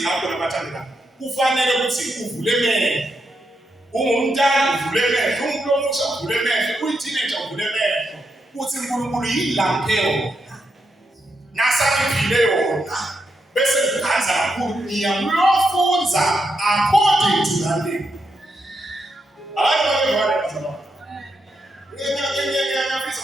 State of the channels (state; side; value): normal; both; correlation 0.83